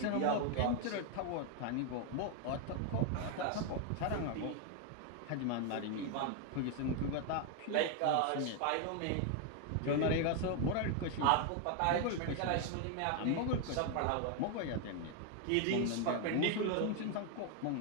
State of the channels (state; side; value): different; both; correlation 0.01